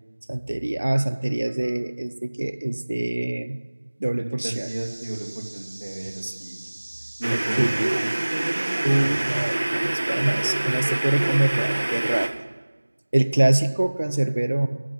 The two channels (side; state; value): both; inverted; correlation -1.00